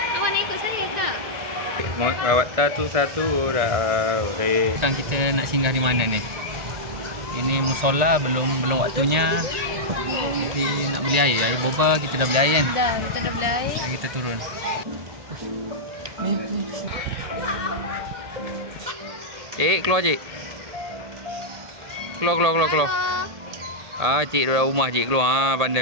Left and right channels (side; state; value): left; late; 1.8 ms